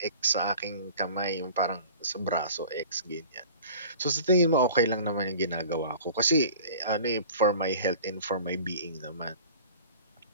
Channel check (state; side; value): inverted; both; correlation -0.44